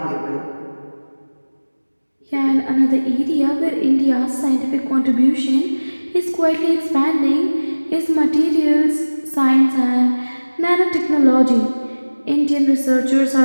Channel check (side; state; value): both; inverted; correlation -1.00